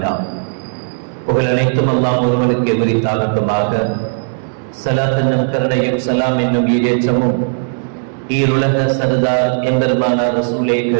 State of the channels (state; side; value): silent; left; digital silence